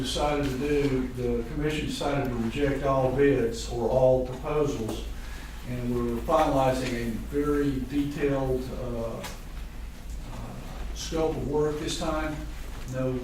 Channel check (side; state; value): both; identical; correlation 1.00